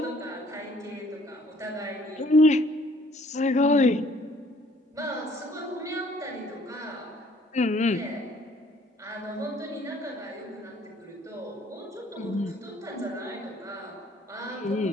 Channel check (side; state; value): both; normal; correlation 0.60